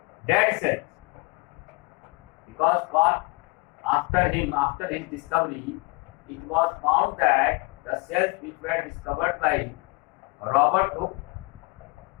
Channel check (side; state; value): right; quieter; 27.9 dB